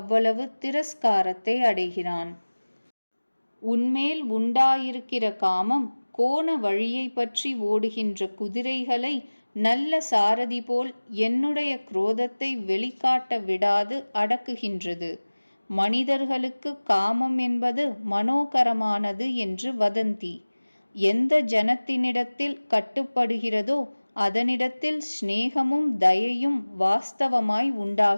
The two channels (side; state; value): both; inverted; correlation -1.00